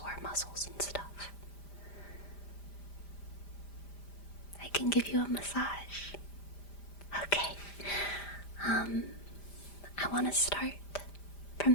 muscles and stuff? I can give you a massage. Okay. I want to start from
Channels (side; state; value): right; late; 5.0 ms